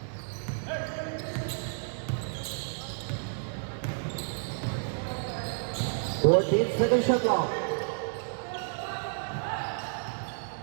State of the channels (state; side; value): silent; left; digital silence